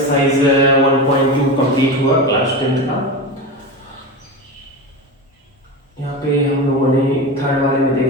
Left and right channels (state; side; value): normal; both; correlation 0.24